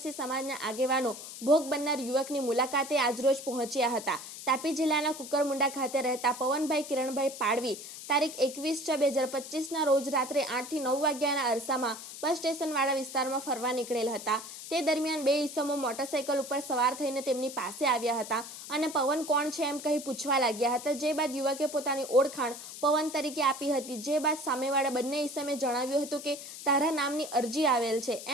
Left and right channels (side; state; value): left; noise; hiss, 12 dB below the sound